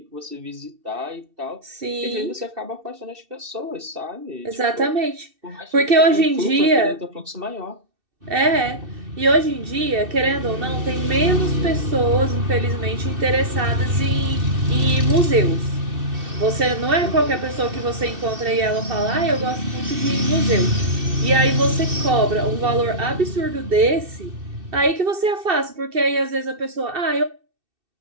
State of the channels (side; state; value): left; late; 2.6 ms